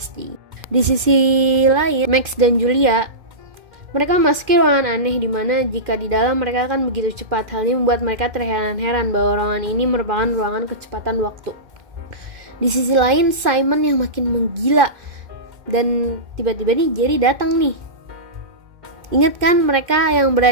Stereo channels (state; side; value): late; left; 2.1 ms